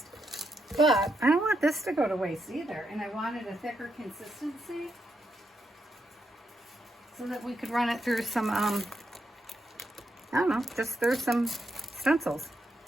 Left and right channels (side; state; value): both; normal; correlation 0.81